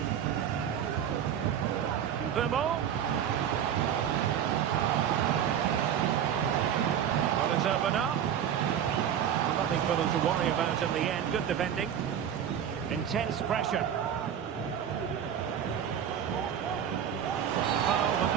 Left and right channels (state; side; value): quieter; left; 9.2 dB